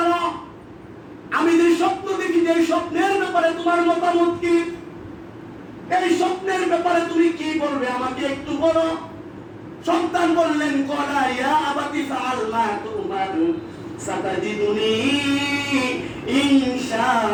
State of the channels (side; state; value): both; identical; correlation 1.00